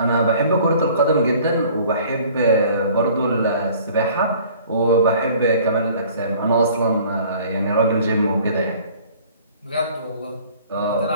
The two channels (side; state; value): both; inverted; correlation -0.51